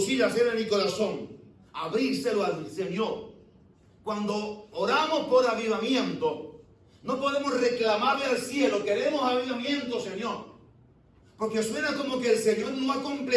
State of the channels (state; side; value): identical; both; correlation 1.00